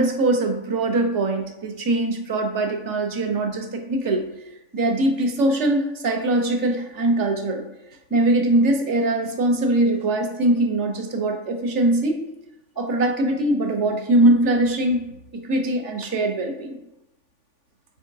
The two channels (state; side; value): late; right; 3.4 ms